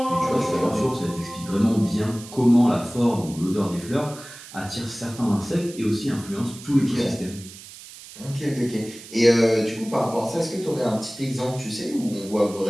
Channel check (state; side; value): noise; right; hiss, 16 dB below the sound